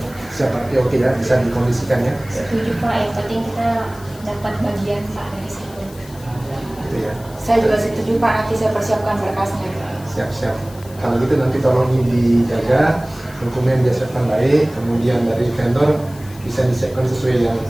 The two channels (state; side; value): noise; left; hiss, 21 dB below the sound